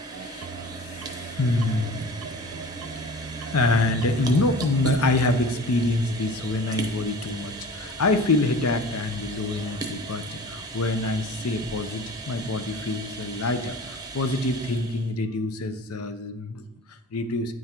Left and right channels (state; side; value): normal; both; correlation 0.40